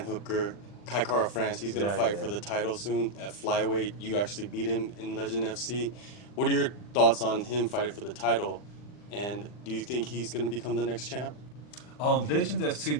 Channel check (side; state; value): right; late; 40 ms